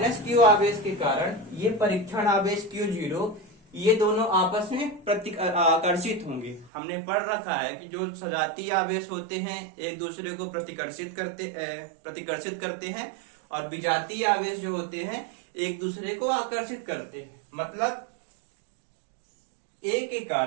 आवेश के कारण ये परीक्षण आवेश Q0 ये दोनों आपस में आकर्षित होंगे। हमने पढ़ रखा है कि जो सजातीय आवेश होते हैं एक दूसरे को प्रतिकर्षित करते हैं और विजातीय आवेश जो होते हैं एक दूसरे को आकर्षित करते हैं। मतलब A के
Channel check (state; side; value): drops out; left; at 6.7 s